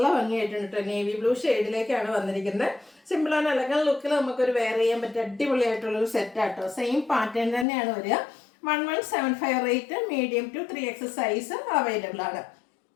ഭംഗിയായിട്ടുണ്ട് കേട്ടോ. നേവി ബ്ലൂ ഷെയ്ഡിലേക്കാണ് വന്നിരിക്കുന്നത്. സിമ്പിൾ ആൻഡ് എലഗൻ ലുക്കിൽ നമുക്കൊരു വെയർ ചെയ്യാൻ പറ്റിയ അടിപൊളിയായിട്ടുള്ളൊരു സെറ്റാട്ടോ. സെയിം പാറ്റേൺ തന്നെയാണ് വരിക. 1175 rate. Medium to 3X size available ആണ്.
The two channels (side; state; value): right; drops out; at 7.7 s